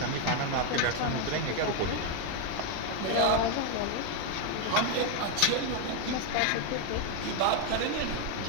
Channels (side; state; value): both; different; correlation 0.02